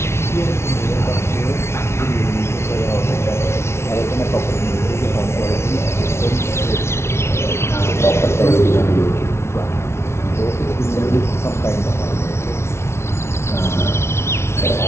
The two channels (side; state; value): right; late; 0.13 ms